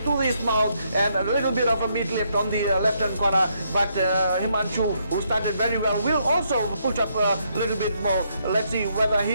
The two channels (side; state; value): both; inverted; correlation -0.75